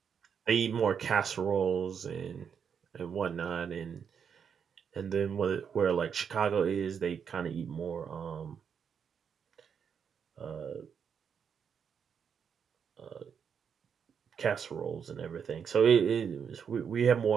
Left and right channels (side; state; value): left; quieter; 7.1 dB